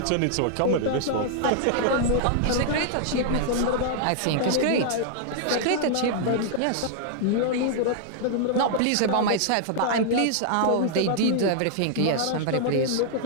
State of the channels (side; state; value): both; different; correlation -0.01